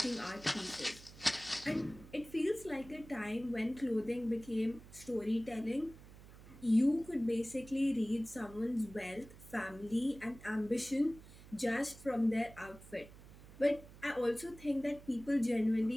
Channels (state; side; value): noise; right; hum, 18 dB below the sound